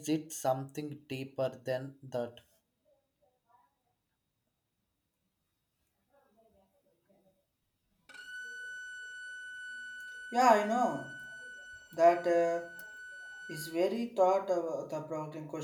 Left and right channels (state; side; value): identical; both; correlation 1.00